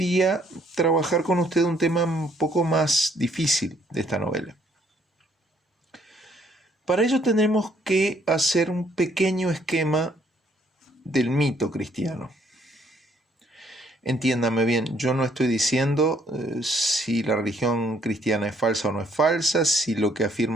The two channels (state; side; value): normal; both; correlation 0.66